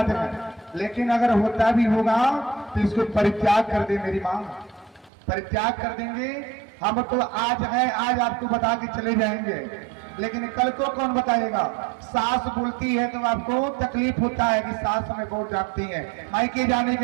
है। लेकिन अगर होता भी होगा तो इसको परित्याग कर दे मेरी मां, परित्याग कर देंगे। हम तो आज है, आज आपको बता के चले जाएंगे, लेकिन कल को कौन बताएगा? सास बोलती है तो आपको तकलीफ होता है कि सास हमें बहुत डांटती है। मायके जाने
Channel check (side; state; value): left; drops out; at 5.1 s